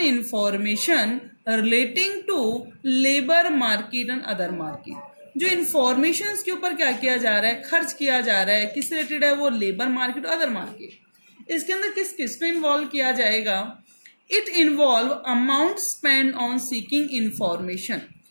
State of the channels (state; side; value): inverted; both; correlation -1.00